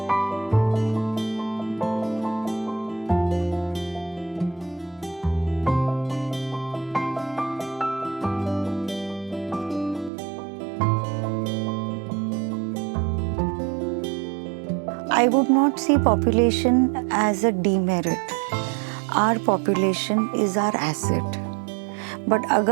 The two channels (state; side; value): drops out; left; at 10.1 s